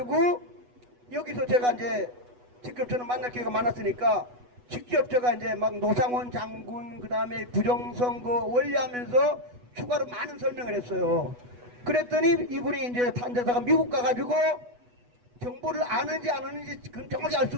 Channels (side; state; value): left; late; 8.2 ms